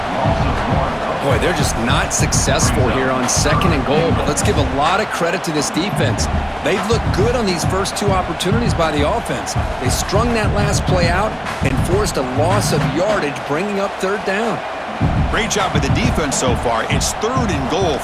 Boy, they're just not successful here on 2nd and goal, but let's give a lot of credit to this defense. They've looked good on these first 2 opportunities by the offense. They strung that last play out and forced a loss of yardage, bringing up 3rd down. Great job by the defense so far. It's 3rd and goal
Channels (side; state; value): both; identical; correlation 1.00